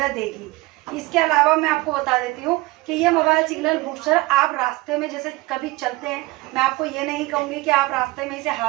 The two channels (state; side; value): quieter; left; 21.4 dB